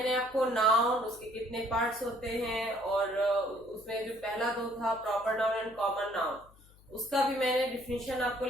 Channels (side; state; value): left; noise; hum, 26 dB below the sound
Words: आपको नाउन, उसके कितने पार्ट्स होते हैं और उसमें जो पहला दो था proper noun and common noun, उसका भी मैंने डिफिनीशन आपको